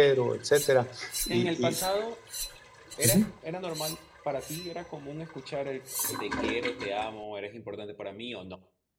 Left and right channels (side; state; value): both; identical; correlation 1.00